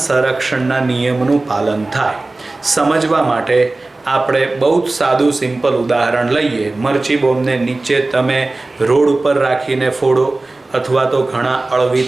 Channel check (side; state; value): left; quieter; 3.1 dB